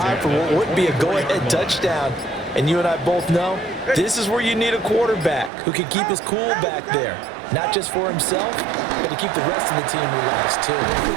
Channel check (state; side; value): drops out; left; at 5.5 s